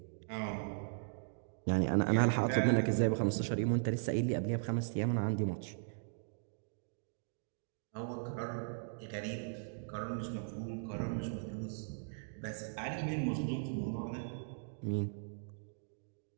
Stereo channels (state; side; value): silent; left; digital silence